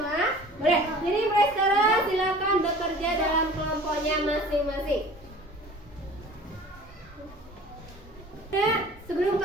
Boleh. Jadi mulai sekarang silakan bekerja dalam kelompoknya masing-masing. Nah, sebelum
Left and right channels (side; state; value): both; normal; correlation 0.45